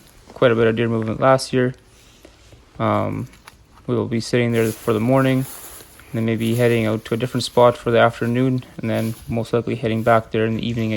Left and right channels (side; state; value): both; identical; correlation 1.00